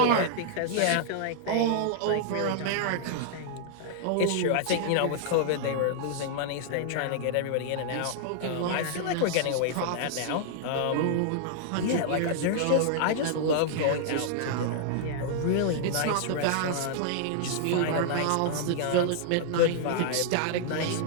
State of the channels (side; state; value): both; different; correlation -0.01